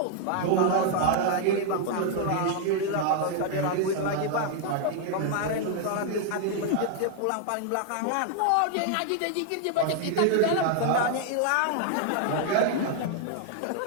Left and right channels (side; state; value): both; different; correlation 0.00